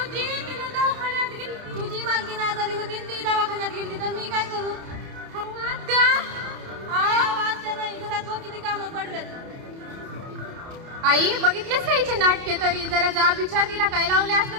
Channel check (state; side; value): late; left; 30 ms